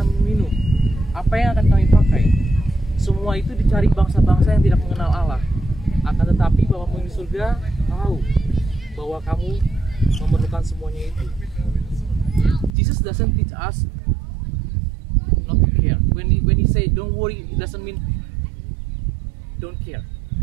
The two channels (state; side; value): drops out; left; at 12.7 s